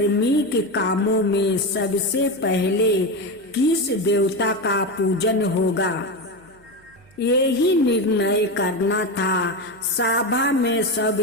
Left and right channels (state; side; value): noise; right; hum, 29 dB below the sound